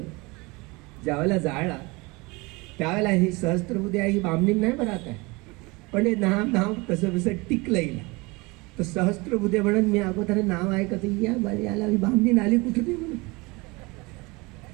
ज्यावेळेला जाळला, त्यावेळेला ही सहस्त्रबुद्धे ही बामणी नाही बरं आहे, पण हे नाव तसं तसं टिकलं येईल. तर सहस्त्रबुद्धे म्हणून मी अगोदर नाव ऐकत याला बामणी आली कुठे नाही म्हणून.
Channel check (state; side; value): quieter; left; 25.1 dB